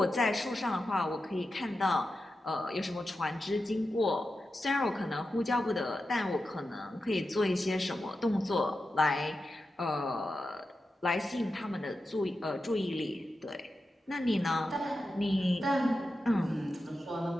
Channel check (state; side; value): normal; both; correlation 0.90